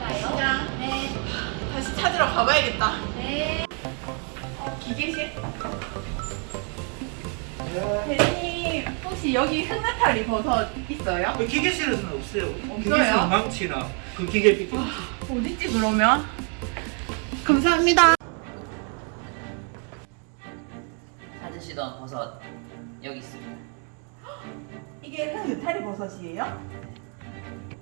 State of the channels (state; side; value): quieter; left; 39.2 dB